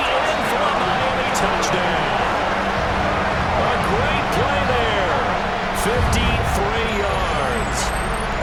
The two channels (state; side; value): identical; both; correlation 1.00